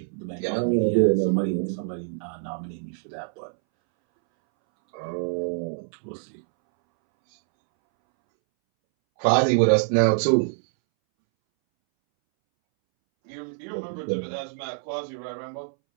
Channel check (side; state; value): left; silent; 61 dB below the other